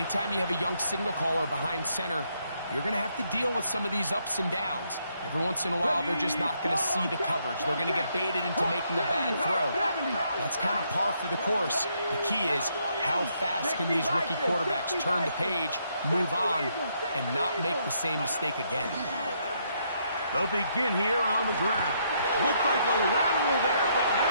you have a young signal caller behind center, you're going to have to deal with some of these ups and downs. Every once in a while, they're just not going to see the coverage. They're going to get baited into making a bad throw. That's kind of par for the course. The key is, how fast can these rookie quarterbacks turn the page, move on, and not make the same mistake again? They'll begin here on the ground. Looked like a lateral there, but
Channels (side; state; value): both; inverted; correlation -0.74